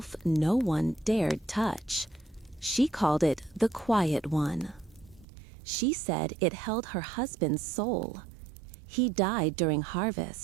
no one dared touch. She called it the Quiet One. She said it held her husband's soul. He died during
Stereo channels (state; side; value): drops out; left; at 5.2 s